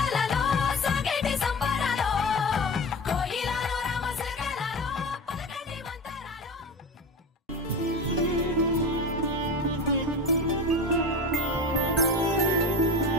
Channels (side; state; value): both; normal; correlation 0.28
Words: సాగేటి సంబరాలో కోయిలలో రామశకలలో పలకండి మంతరాలో